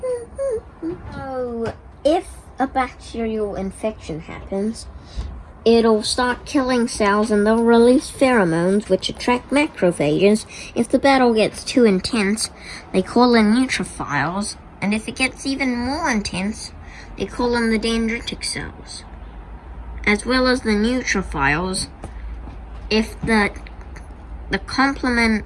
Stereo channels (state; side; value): identical; both; correlation 1.00